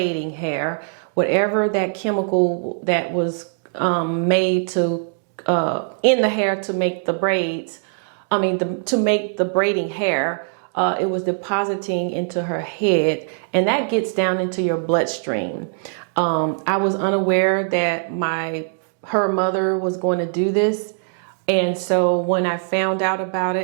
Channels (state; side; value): silent; left; digital silence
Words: hair. Whatever that chemical that was made to in the hair to make the braids, to make the braiding hair, it was depositing into her head, and that gets down into your bloodstream. I was unaware that her mother was going to do this, and so when I found out about